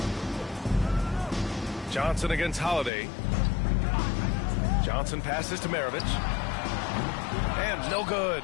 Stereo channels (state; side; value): drops out; right; at 2.9 s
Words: Johnson against Holiday. Johnson passes to Maravich. And no good.